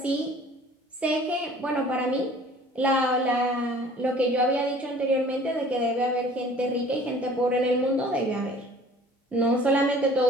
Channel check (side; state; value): both; normal; correlation 0.50